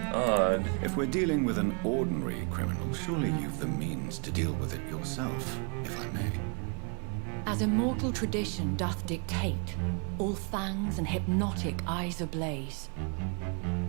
Odd. If we're dealing with an ordinary criminal, surely you've the means to deal with it yourself, if I may. As immortal tradition doth dictate, all fangs and hypnotic eyes ablaze,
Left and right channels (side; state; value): left; quieter; 37.6 dB